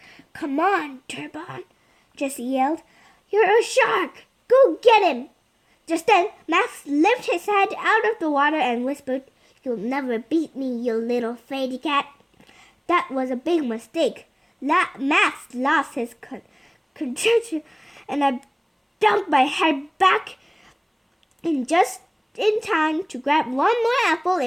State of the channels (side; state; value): both; identical; correlation 1.00